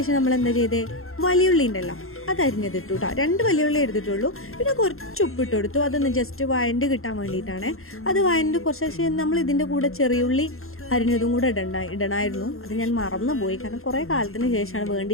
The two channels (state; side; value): late; right; 0.61 ms